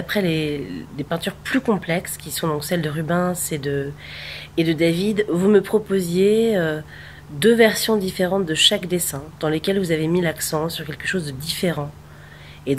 les peintures plus complexes, qui sont donc celles de Rubens et de David, vous me proposiez 2 versions différentes de chaque dessin, dans lesquelles vous avez mis l'accent sur quelque chose de différent. Et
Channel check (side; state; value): both; identical; correlation 1.00